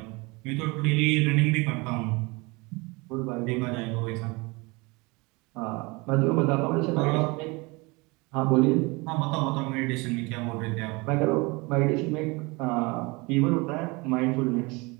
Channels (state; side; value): quieter; left; 26.0 dB